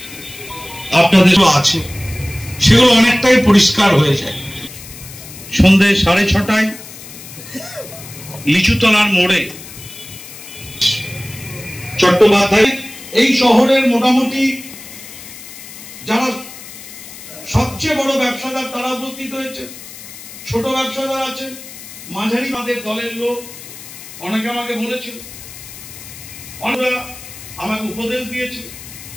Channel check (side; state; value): left; noise; hiss, 15 dB below the sound